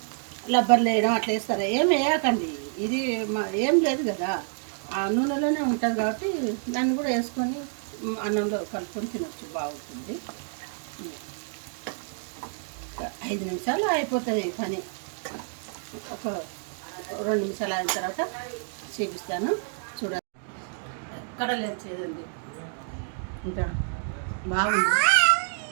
లబ్బర్లు వేయడం అట్లా వేస్తారు. ఏం వేయకండి, ఇది ఏం లేదు కదా, ఆ నూనెలోనే ఉంటుంది కాబట్టి దాన్ని కూడా వేసుకొని అన్నంలో కలుపుకొని తినచ్చు, బాగుంటుంది. 5 నిమిషాలు అయిపోతుంది పని. ఒక 2 నిమిషాలు అయిన తర్వాత చూపిస్తాను, చూడండి. ఎక్కడ లేదు చేదండి, ఇంకా బాగుంది.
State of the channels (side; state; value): left; silent; 59 dB below the other